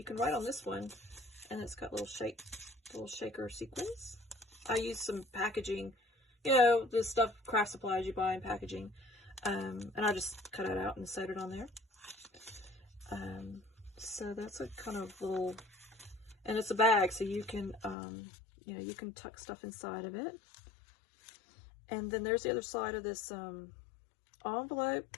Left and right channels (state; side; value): drops out; right; at 17.9 s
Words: can write on this one, and it's got little shaker sequins. I used some packaging, the stuff, craft supplies you buy in packaging, and I just cut it out and sewed it on there. So that's a kind of little, and it's a bag, so you can, you can tuck stuff inside of it. And then there's the other side of this